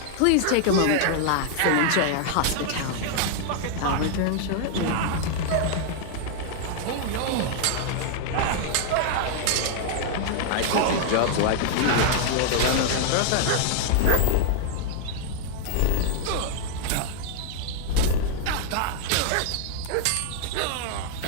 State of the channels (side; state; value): both; different; correlation -0.01